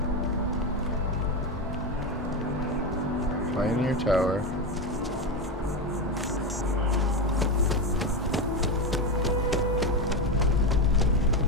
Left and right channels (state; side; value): normal; both; correlation 0.15